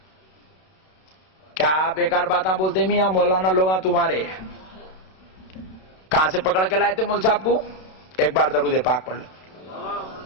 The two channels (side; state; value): right; late; 32 ms